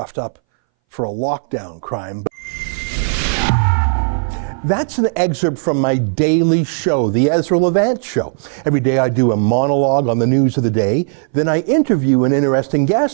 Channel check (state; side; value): silent; left; 64 dB below the other